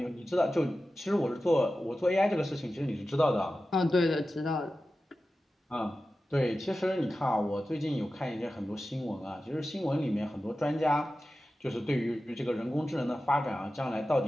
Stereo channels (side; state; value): both; normal; correlation 0.94